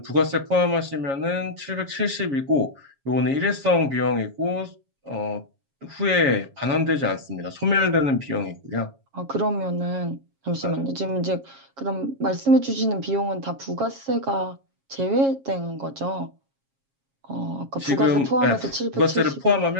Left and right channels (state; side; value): late; left; 7.3 ms